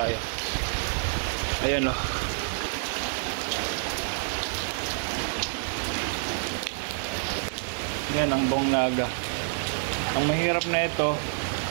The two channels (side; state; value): left; silent; digital silence